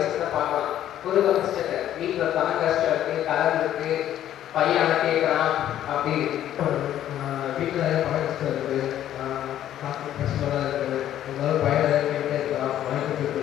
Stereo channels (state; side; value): quieter; right; 11.7 dB